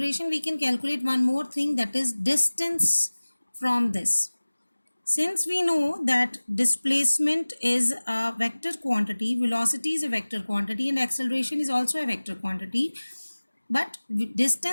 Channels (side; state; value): both; inverted; correlation -1.00